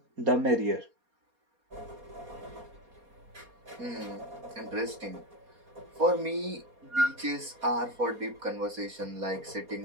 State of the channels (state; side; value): late; left; 4.2 ms